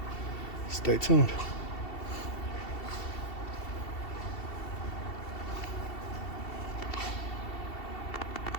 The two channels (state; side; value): late; right; 2.7 ms